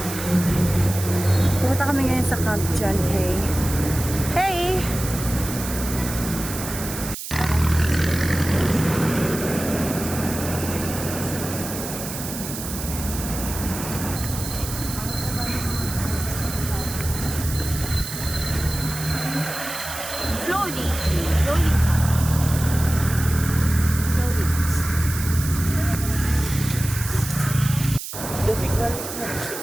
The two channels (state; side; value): noise; right; hiss, 8 dB below the sound